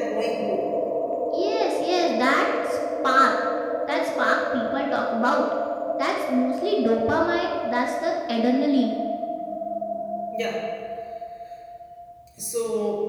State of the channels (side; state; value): both; identical; correlation 1.00